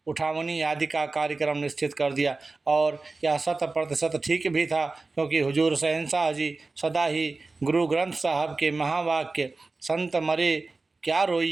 उठावनी आदि का कार्यक्रम निश्चित कर दिया। और यह 100% ठीक भी था क्योंकि हुजूर शहंशाह जी सदा ही गुरु ग्रंथ साहब के महावाक्य संत मरे क्या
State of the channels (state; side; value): quieter; left; 3.6 dB